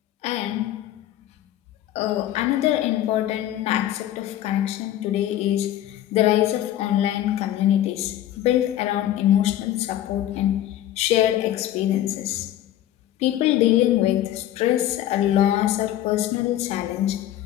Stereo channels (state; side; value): quieter; right; 12.7 dB